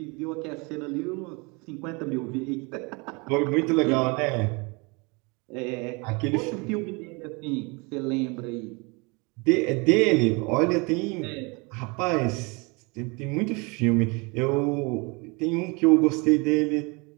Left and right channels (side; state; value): left; quieter; 29.0 dB